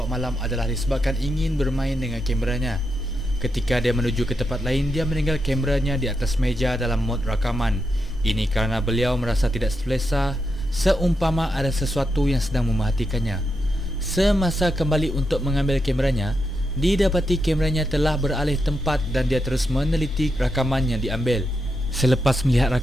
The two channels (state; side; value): normal; both; correlation 0.85